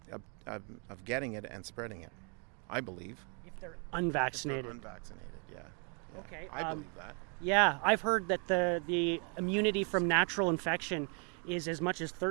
of getting it and spreading it. I believe. If they're unvaccinated. Yeah. Okay. I believe that. Yeah, I've heard that the immunity from natural infection is as much as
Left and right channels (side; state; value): left; quieter; 38.1 dB